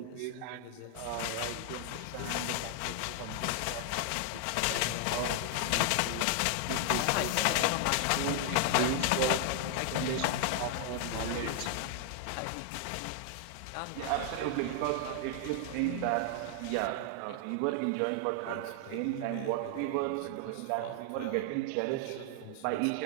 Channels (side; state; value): both; different; correlation 0.00